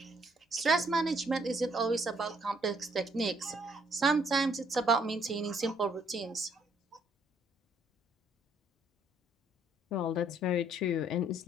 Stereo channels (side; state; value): both; normal; correlation 0.67